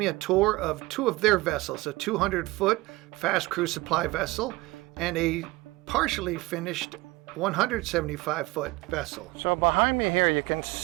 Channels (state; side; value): quieter; left; 21.5 dB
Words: a tour of two of their vessels, a 200-foot fast crew supply vessel and a partially finished 175-foot vessel. So behind me here you can